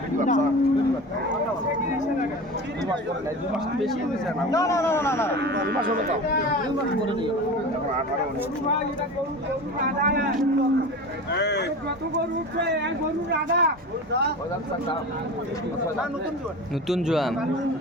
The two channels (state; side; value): normal; both; correlation 0.32